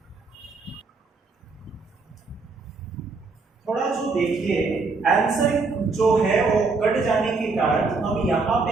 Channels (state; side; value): quieter; left; 4.1 dB